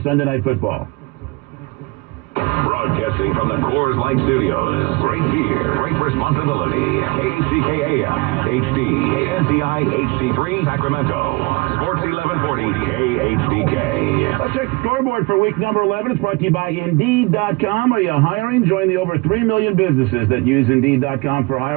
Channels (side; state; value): left; quieter; 25.1 dB